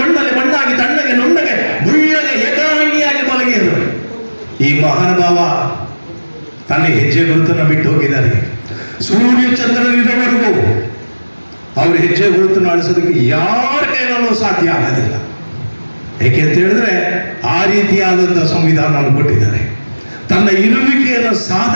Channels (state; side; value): inverted; both; correlation -1.00